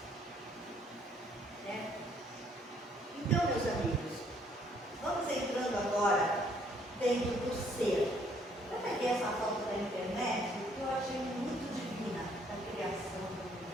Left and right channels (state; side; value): normal; both; correlation 0.65